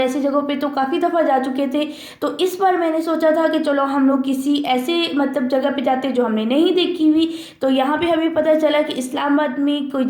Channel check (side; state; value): both; identical; correlation 1.00